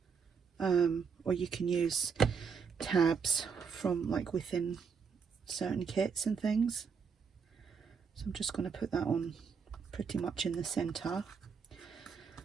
or you can use tabs from like within certain kits and things. So I'm just going to put that on pretty much in the center.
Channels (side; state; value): left; quieter; 6.0 dB